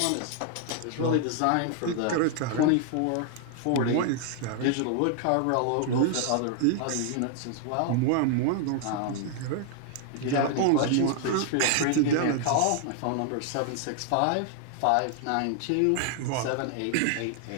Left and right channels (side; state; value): both; different; correlation 0.00